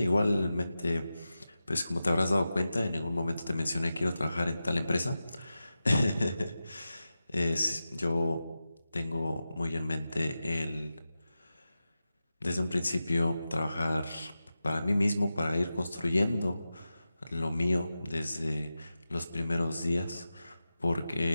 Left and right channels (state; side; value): inverted; both; correlation -0.92